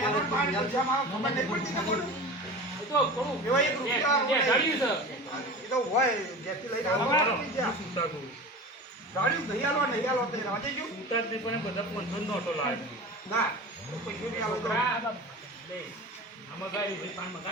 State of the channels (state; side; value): normal; both; correlation 0.33